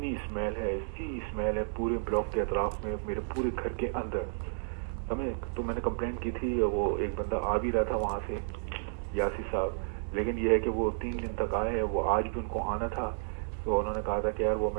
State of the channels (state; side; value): silent; left; digital silence